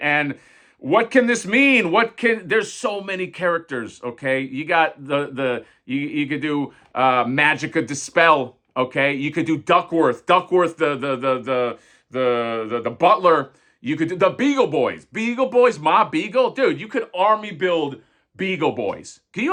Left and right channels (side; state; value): both; identical; correlation 1.00